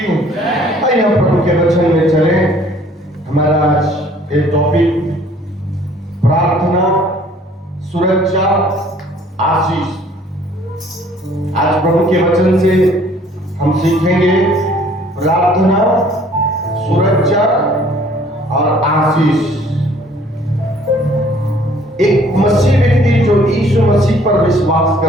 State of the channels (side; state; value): both; normal; correlation 0.57